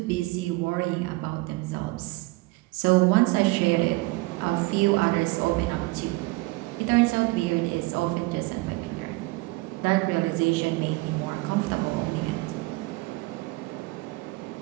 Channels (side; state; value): left; quieter; 22.6 dB